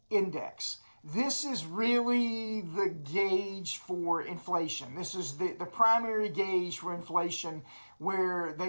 Index. This is really the gauge for inflation. This is the primary gauge for inflation, where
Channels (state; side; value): inverted; both; correlation -1.00